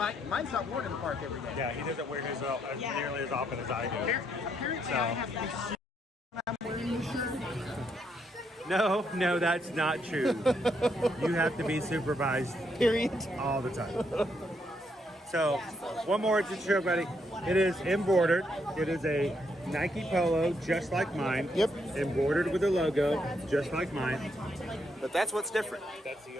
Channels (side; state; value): both; normal; correlation 0.76